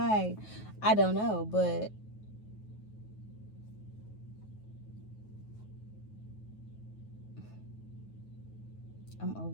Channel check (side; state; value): right; late; 9.4 ms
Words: I don't know, but I'm